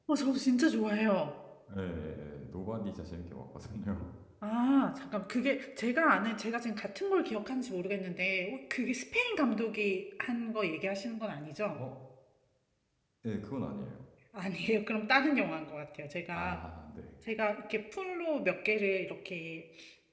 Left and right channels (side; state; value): both; identical; correlation 1.00